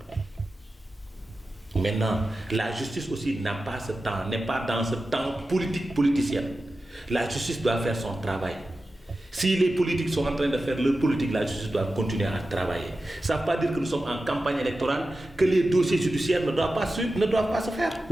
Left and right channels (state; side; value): normal; both; correlation 0.93